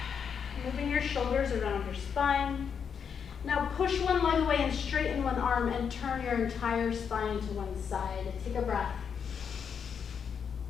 moving your shoulders around your spine. Now push one leg away and straighten one arm and turn your entire spine to one side. Take a breath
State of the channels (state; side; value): quieter; right; 7.0 dB